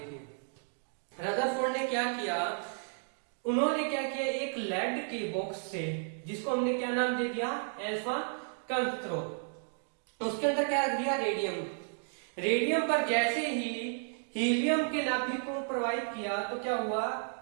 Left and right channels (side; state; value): left; silent; 56 dB below the other